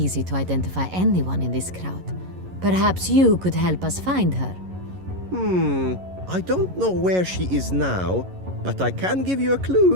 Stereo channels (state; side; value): late; left; 11 ms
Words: to identify anyone in this crowd. Perhaps you could help us find her. I don't know where she is now, but I can give you a